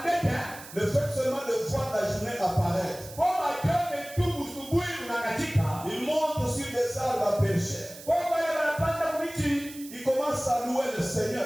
Le fait seulement de voir la journée apparaître. Ils montent sur des arbres à percher. Ils commencent à louer le Seigneur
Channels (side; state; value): right; noise; hiss, 16 dB below the sound